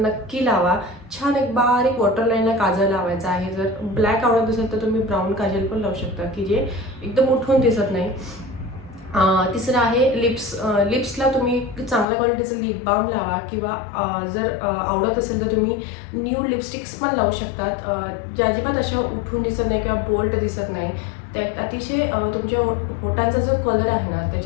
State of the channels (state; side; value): drops out; right; at 12.1 s